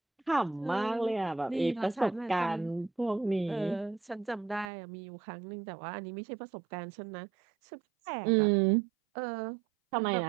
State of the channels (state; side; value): drops out; left; at 4.7 s